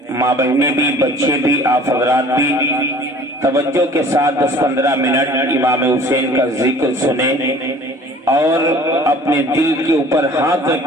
ماں بہنیں بھی، بچے بھی، آپ حضرات بھی توجہ کے ساتھ 10-15 منٹ امام حسین کا ذکر سنیں اور اپنے دل کے اوپر ہاتھ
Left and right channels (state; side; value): normal; both; correlation 0.48